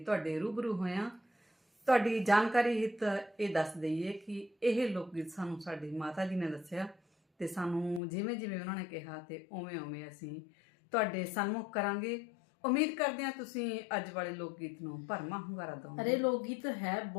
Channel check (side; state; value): right; drops out; at 8.0 s